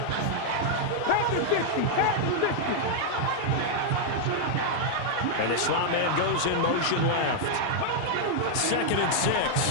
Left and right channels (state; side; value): different; both; correlation -0.01